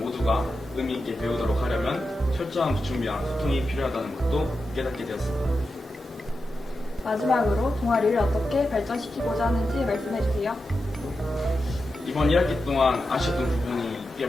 모두가 의미 있게 배우도록 하려면 철저한 준비와 소통이 필요하다는 것도 깨닫게 되었습니다. 마지막으로 동아리를 어떻게 발전시키고자 하는지 말씀해 주세요. 이번 1학기 동안 아쉬웠던 부분이 꽤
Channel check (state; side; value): normal; both; correlation 0.90